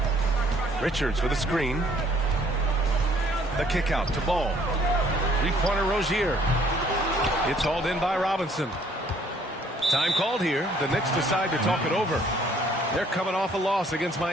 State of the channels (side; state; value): both; normal; correlation 0.61